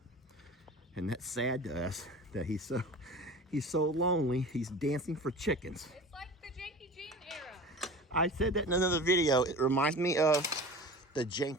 And that's sad to us that he's so lonely, he's dancing for chickens. it's like the Janky Jean era. I said that in another video. It reminds me of the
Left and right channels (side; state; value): both; normal; correlation 0.37